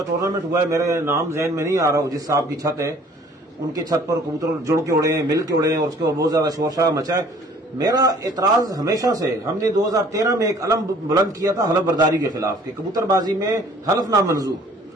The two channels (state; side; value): normal; both; correlation 0.54